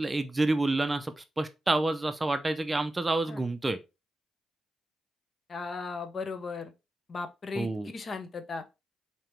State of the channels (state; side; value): normal; both; correlation 0.93